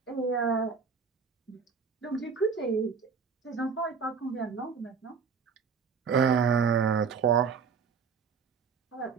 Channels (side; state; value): left; quieter; 5.9 dB